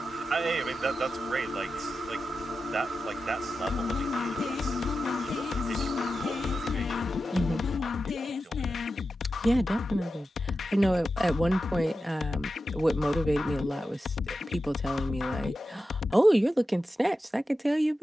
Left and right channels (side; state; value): both; normal; correlation 0.91